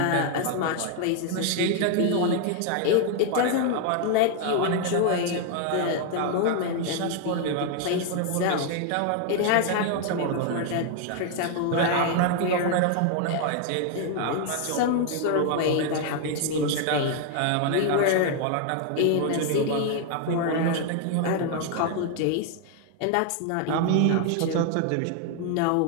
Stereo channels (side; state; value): both; different; correlation 0.00